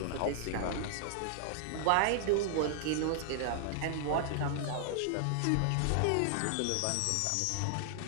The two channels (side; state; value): both; different; correlation -0.01